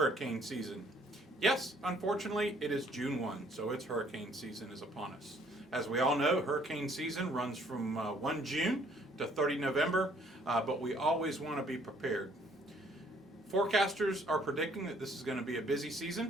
season. Yes, unfortunately, it is June 1, so it's hurricane season is upon us. As we all know, hurricane season runs from 1 June to 30 November, but we always want to be prepared. Forecasters are predicting that this is going to be a busy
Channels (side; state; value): both; normal; correlation 0.62